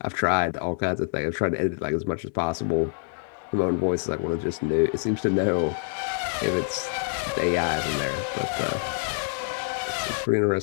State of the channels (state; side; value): silent; right; digital silence